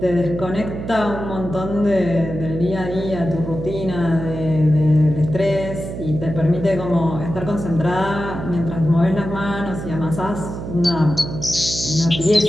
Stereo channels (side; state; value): right; noise; hum, 7 dB below the sound